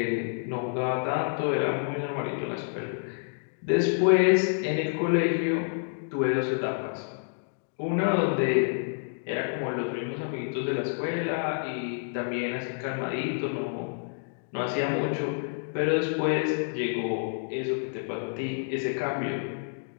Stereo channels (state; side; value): silent; right; digital silence